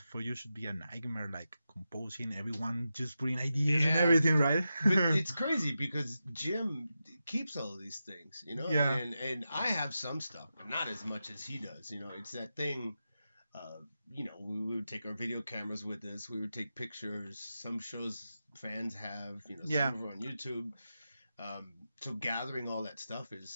for you should be a nightmare, composing, everyone just bringing ideas and everything, right? But it's crazy because Jim keeps all of these things, Yeah. And I have some stuff, but not as much as he does. It's that thing. We would take our video cameras with us. We would take pictures. Some shows fans have, some of them on YouTube. So gathering all that stuff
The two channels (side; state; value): both; inverted; correlation -0.90